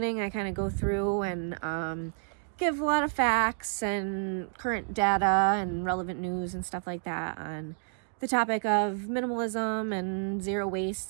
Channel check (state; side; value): silent; left; digital silence